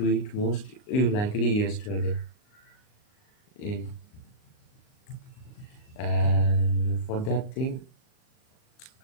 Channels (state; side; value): late; right; 38 ms